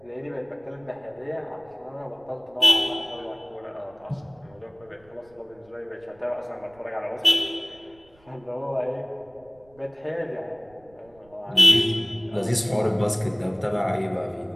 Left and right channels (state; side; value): noise; right; rumble, 30 dB below the sound